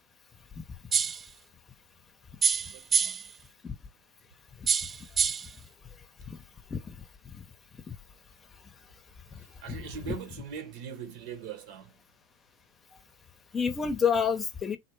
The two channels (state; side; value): normal; both; correlation 0.70